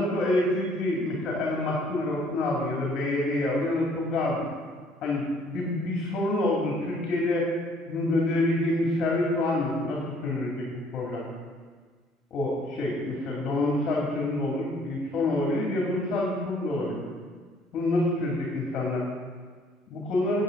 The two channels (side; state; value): both; normal; correlation 0.61